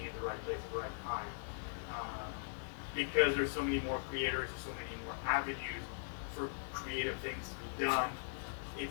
in the right place at the right time. Because there's so many more creators, there's so many more avenues for creative things to be done,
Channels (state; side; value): silent; right; digital silence